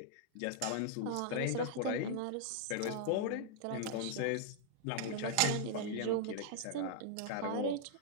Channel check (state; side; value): different; both; correlation -0.01